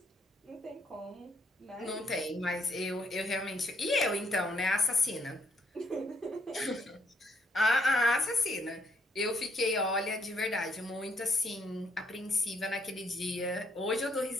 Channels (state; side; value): normal; both; correlation 0.71